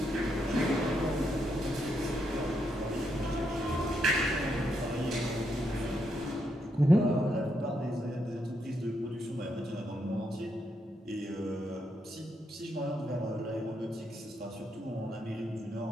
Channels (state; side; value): normal; both; correlation 0.79